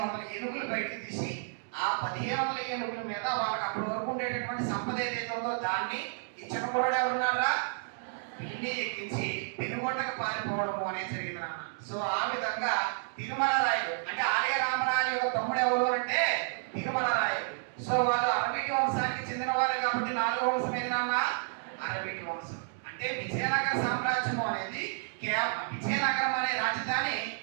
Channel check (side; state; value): left; silent; digital silence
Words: ఏనుగులు బయటకు తీసి ఆ 1500 ఏనుగుల మీద వాళ్ళకి అప్పటి వరకు ఉండేటటువంటి సంపద ఏదైతే ఉందో దాన్ని ఈ చిన్నకుర్రాడు ఎవరున్నారా పిల్లి ఎక్కించి పెనుగొండకు పారిపోవడము అనేది జరిగింది నాన్న. సో ఆ విధంగా తిరుమల రాయలు అంటే ఆలయ రామరాయల యొక్క తమ్ముడు ఎవరు అంటే తిరుమల రాయలు. సో వాళ్ళు అరవీటి వంశానికి చెందిన వారు కాబట్టి 4వ వంశం ఏది నాన్న? అరవీటి వంశం. అంటే విజయనగర సామ్రాజ్యము అనేది కేవలం విజయనగరం అనే రాజధాని